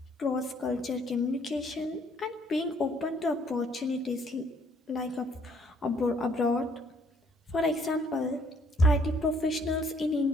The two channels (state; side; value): normal; both; correlation 0.63